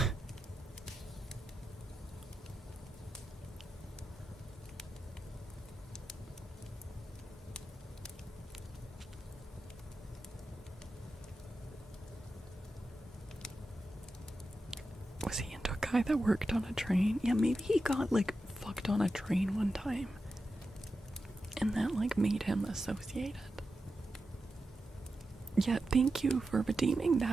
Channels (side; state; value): both; normal; correlation 0.90